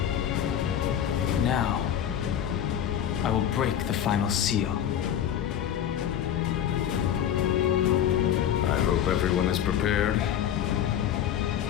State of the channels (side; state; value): right; quieter; 9.9 dB